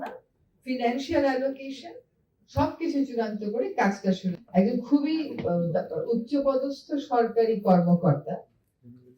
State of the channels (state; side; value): identical; both; correlation 1.00